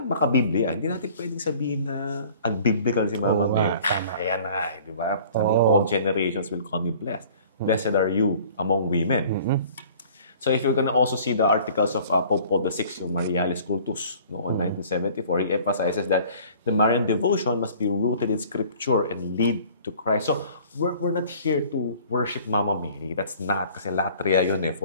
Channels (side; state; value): both; inverted; correlation -0.50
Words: makabiblia. Hindi natin pwedeng sabihin na unbiblical si Mama Mary. Ayan na, di ba? Sabi niya, all generations will call me blessed. Blessed are you among women. So if you're gonna also see the articles of Pope Paul VI, yung Marialis Cultus, noong 1974, he emphasizes that the Marian devotion must be rooted in Scripture and lead to Christ. So we're not here to worship Mama Mary. That's not, kasi latria yun